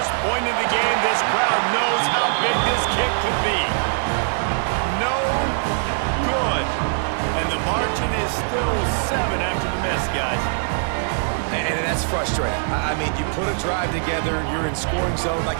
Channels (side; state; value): left; silent; digital silence